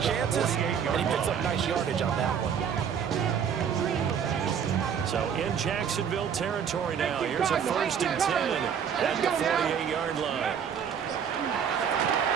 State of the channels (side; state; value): left; quieter; 7.7 dB